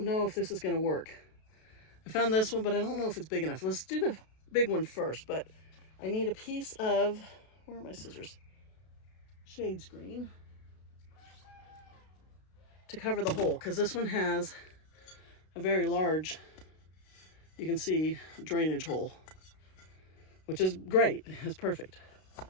know if this is gonna work. I found this one, but I don't know if it's big enough. Let's do the big one first, but I need a piece of, where are my scissors? Shade screen to cover the hole, because this one has a very large, you can see, drainage hole, which is great, it's perfect.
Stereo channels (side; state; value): right; late; 32 ms